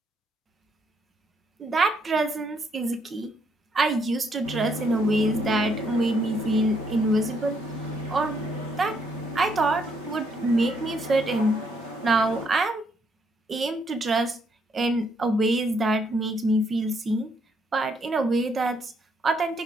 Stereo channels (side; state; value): both; normal; correlation 0.72